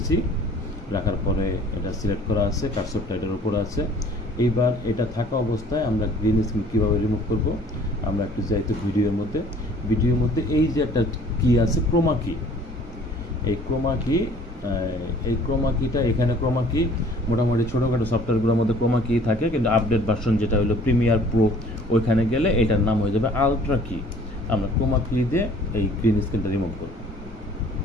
রাখার পরে এটা সিলেক্ট করা আছে, কার্সরটা এটার উপরে আছে। এইবার এটা থাকা অবস্থায় আমরা গ্রিন স্ক্রিন কীভাবে রিমুভ করব, আমরা একটু যাইতে ভিডিওর মধ্যে এই যে একটা কি আছে ক্রোমা কি, এই ক্রোমা কি এই ক্রোমা কিটা, এখানে ক্রোমা কি মোটামুটি ছোটোখাটো সফটওয়্যারগুলোর মধ্যে ক্রোমা কি থাকে, কিন্তু আপডেট ভার্সন যেটা হলো প্রিমিয়ার প্রো, ওইখানে গেলে এটার নাম হয়ে যাবে আলট্রা কি। আমরা ক্রোমা কি দিয়ে এই গ্রিন স্ক্রিনটা রিমুভ করব।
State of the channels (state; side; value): normal; both; correlation 0.53